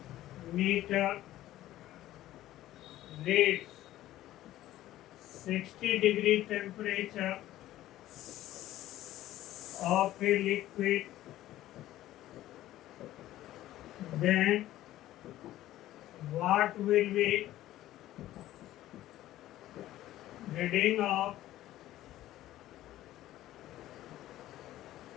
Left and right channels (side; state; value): right; quieter; 14.4 dB